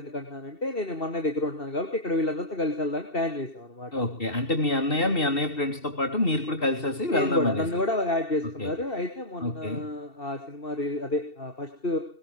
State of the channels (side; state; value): right; late; 2.7 ms